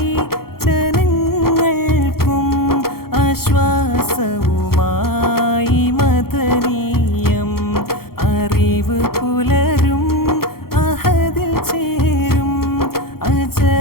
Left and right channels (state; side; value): late; right; 0.94 ms